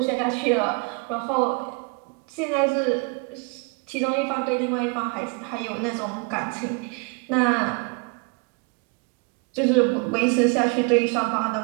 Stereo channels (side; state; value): left; quieter; 31.4 dB